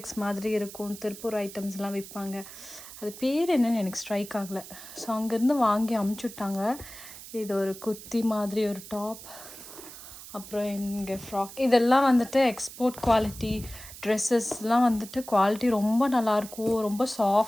மாதிரி இருக்கும், திருப்பூர் ஐட்டம்ஸ்லாம் விற்பாங்க. அது பேர் என்னன்னு எனக்கு ஸ்ட்ரைக் ஆகலை. ஸோ அங்கேருந்து வாங்கி அமுச்சுட்டாங்க. இது ஒரு குர்த்தி மாதிரி ஒரு டாப், அப்புறம் இங்கே ஃப்ராக். இதெல்லாம் வந்துட்டு எக்ஸ்போர்ட் குவாலிட்டி ட்ரெஸ்ஸஸ்லாம் வந்துட்டு குவாலிட்டி ரொம்ப நல்லாயிருக்கும், ரொம்ப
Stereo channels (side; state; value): right; noise; hiss, 15 dB below the sound